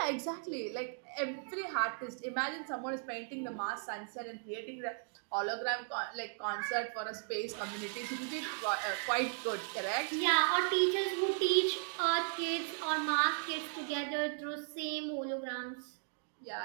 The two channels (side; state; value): left; silent; 53 dB below the other